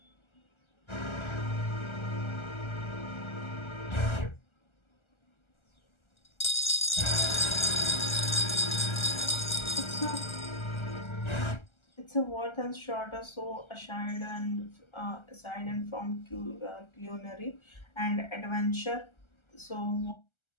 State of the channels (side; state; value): right; late; 1.3 ms